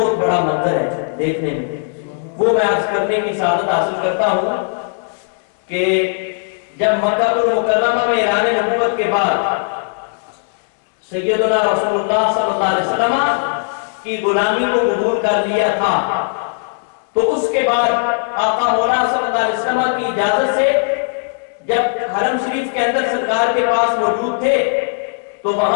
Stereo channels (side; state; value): right; silent; digital silence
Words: بڑا منظر ہے دیکھنے میں، وہ میں عرض کرنے کی سعادت حاصل کرتا ہوں کہ جب مکہ المکرمہ میں اعلان نبوت کے بعد سیدنا رسول اللہ صلی اللہ علیہ وسلم کی غلامی کو قبول کر لیا تھا، تو اس کے بعد آقا مولا صلی اللہ علیہ وسلم کی اجازت سے جب حرم شریف کے اندر سرکار کے پاس موجود تھے تو